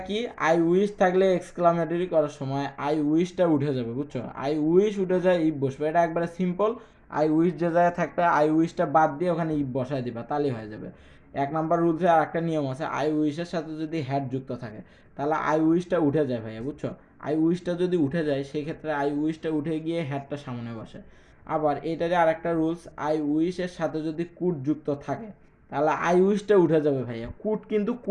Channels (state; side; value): identical; both; correlation 1.00